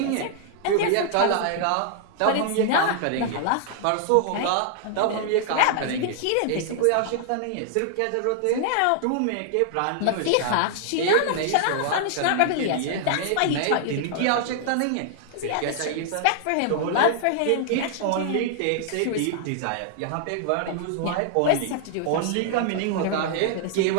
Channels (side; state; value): both; different; correlation -0.01